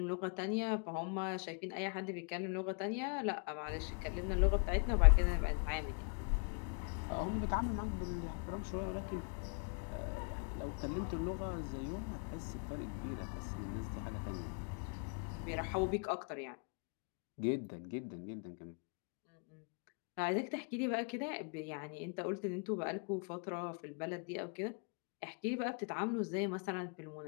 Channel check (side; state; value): right; quieter; 39.0 dB